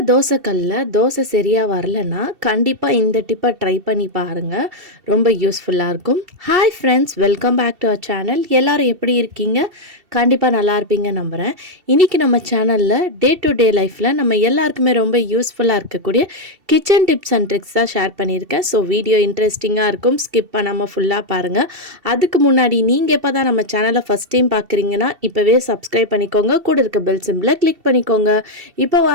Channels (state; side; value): late; left; 2.7 ms